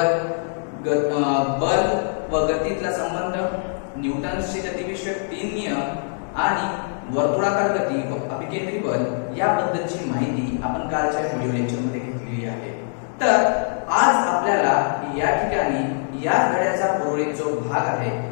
बल व गतीतला संबंध, न्यूटनचे गतिविषयक 3 नियम आणि वर्तुळाकार गती व अभिकेंद्री बल याबद्दलची माहिती आपण कालच्या व्हिडिओ लेक्चर मध्ये घेतलेली आहे। तर आज आपल्याला या ठिकाणी या धड्याचा उर्वरित जो भाग आहे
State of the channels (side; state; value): right; silent; digital silence